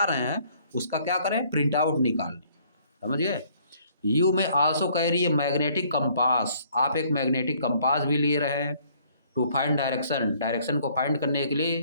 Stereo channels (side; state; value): both; inverted; correlation -0.61